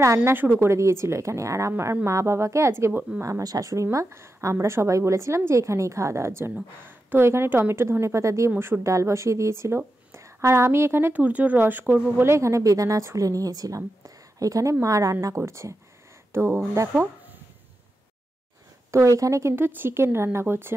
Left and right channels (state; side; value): normal; both; correlation 0.90